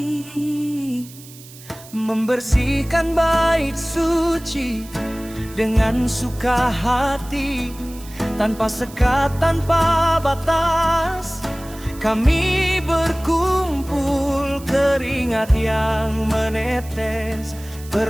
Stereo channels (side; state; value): right; noise; hiss, 19 dB below the sound